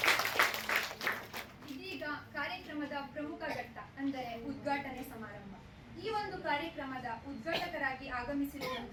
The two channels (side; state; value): both; identical; correlation 1.00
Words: ಇದೀಗ ಕಾರ್ಯಕ್ರಮದ ಪ್ರಮುಖ ಘಟ್ಟ ಅಂದರೆ ಉದ್ಘಾಟನೆ ಸಮಾರಂಭ. ಈ ಒಂದು ಕಾರ್ಯಕ್ರಮದ ಉದ್ಘಾಟಕರಾಗಿ